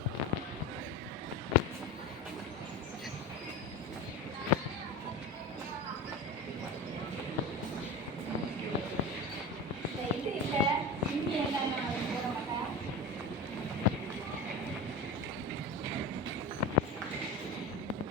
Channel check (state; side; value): normal; both; correlation 0.27